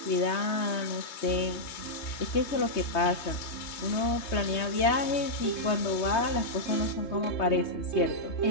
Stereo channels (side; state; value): right; late; 3.2 ms